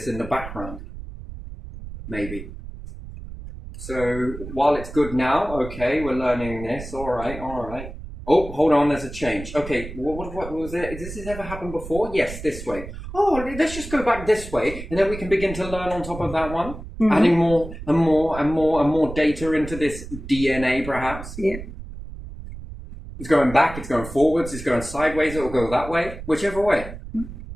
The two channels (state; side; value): noise; right; rumble, 11 dB below the sound